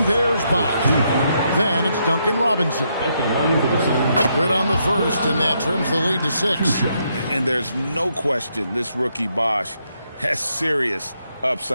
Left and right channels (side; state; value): both; inverted; correlation -0.77